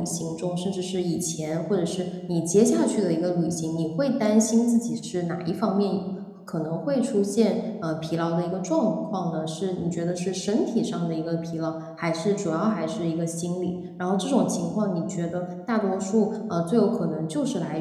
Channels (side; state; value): both; identical; correlation 1.00